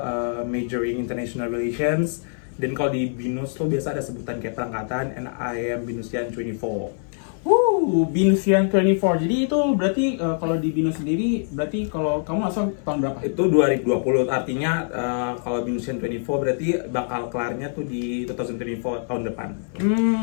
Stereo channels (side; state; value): right; silent; 58 dB below the other